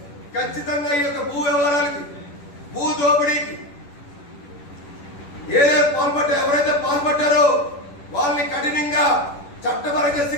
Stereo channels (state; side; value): late; right; 10 ms